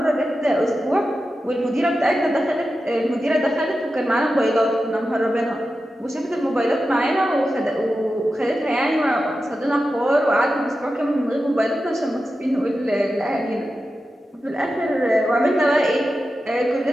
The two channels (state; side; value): normal; both; correlation 0.91